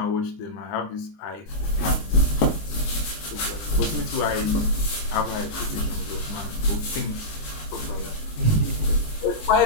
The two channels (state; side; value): late; right; 19 ms